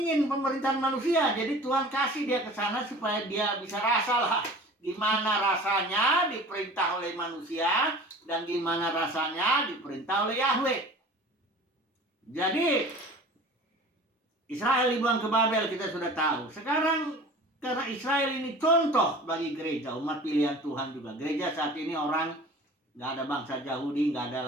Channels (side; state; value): both; normal; correlation 0.42